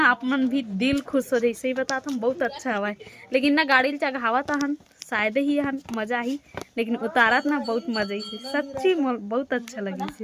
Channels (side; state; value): both; identical; correlation 1.00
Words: आप मन भी दिल खुश हो जाए। सही बताता हम बहुत अच्छा हवा लेकिन ना गाड़ी चढ़ावा था हन शायद ही हन मजा ही लेकिन उतारत ना बहुत मजा ही सच्ची बहुत अच्छा लगी